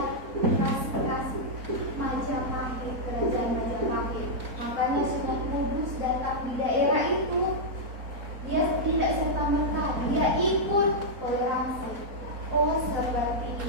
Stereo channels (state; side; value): late; left; 4.1 ms